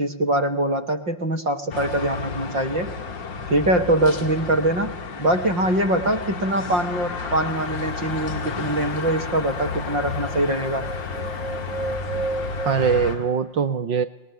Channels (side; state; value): left; late; 5.6 ms